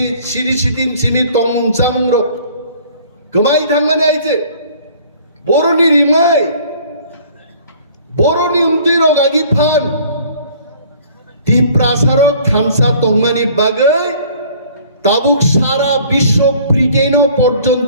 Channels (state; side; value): inverted; both; correlation -0.53